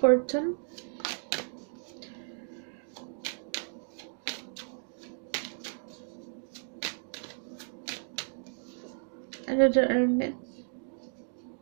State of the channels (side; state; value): left; silent; digital silence